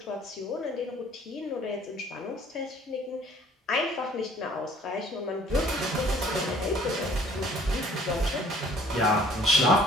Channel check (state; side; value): normal; both; correlation 0.56